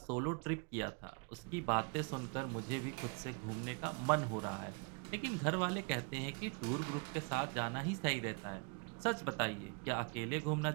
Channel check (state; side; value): quieter; left; 34.8 dB